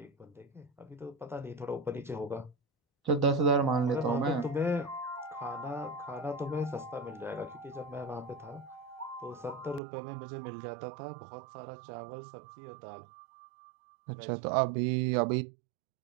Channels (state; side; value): drops out; left; at 9.8 s